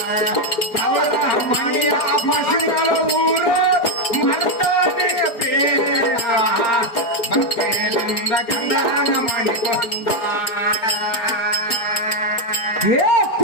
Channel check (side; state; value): right; late; 4.9 ms